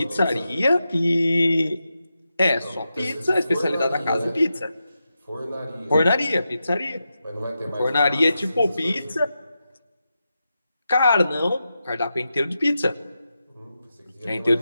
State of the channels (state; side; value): inverted; both; correlation -0.89